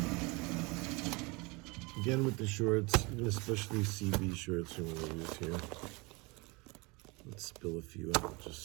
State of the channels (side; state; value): left; quieter; 26.6 dB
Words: Again with the shorts, especially CB shorts I'm going to use here. Let's spill a few out